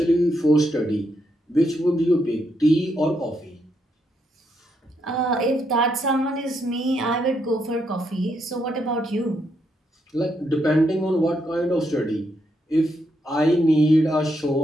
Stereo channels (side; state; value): both; normal; correlation 0.78